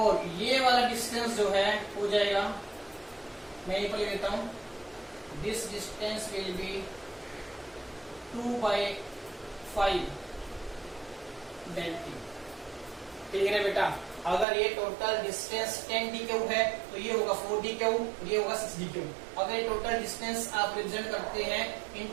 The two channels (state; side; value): drops out; left; at 14.5 s